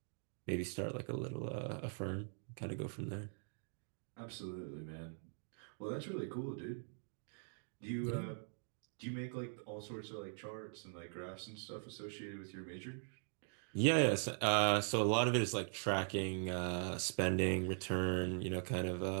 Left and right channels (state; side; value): silent; left; digital silence